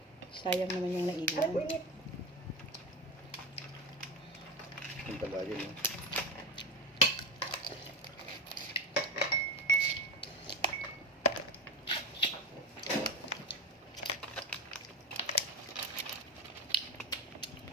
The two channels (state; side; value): normal; both; correlation 0.20